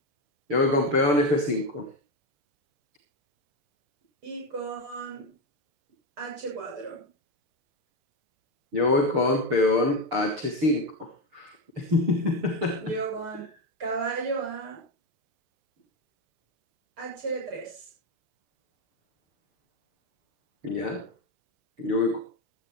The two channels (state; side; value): late; left; 6.7 ms